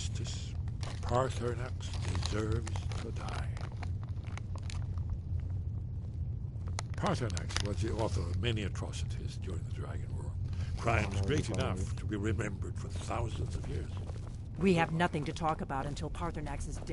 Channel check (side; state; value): both; identical; correlation 1.00